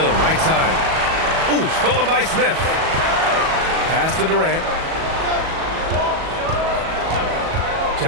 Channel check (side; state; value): left; late; 37 ms